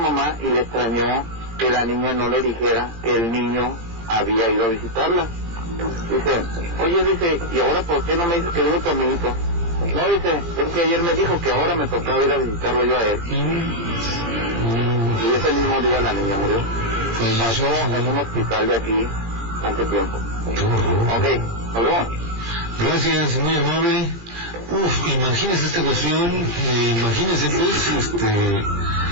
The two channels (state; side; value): late; left; 20 ms